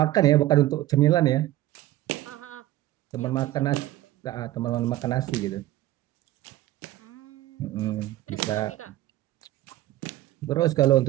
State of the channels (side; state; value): left; quieter; 15.4 dB